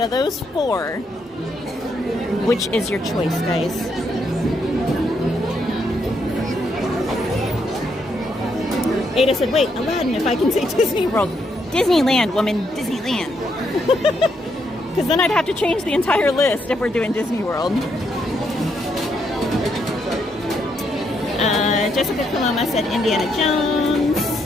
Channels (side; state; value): both; normal; correlation 0.77